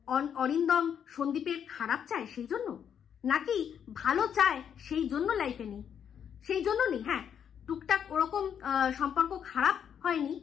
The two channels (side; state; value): right; quieter; 8.3 dB